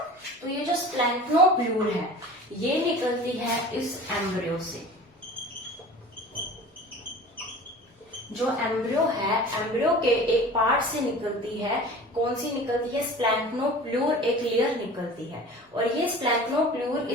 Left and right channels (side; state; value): both; normal; correlation 0.40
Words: तो ये जो स्प्लैंक्नोप्लूर है ये निकलती है इस एम्ब्रियो से। जो एम्ब्रियो है, एम्ब्रियो के एक पार्ट से निकलती है, कौन सी निकलती है, स्प्लैंक्नोप्लूर, एक लेयर निकलती है। और ये स्प्लैंक्नोप्लूर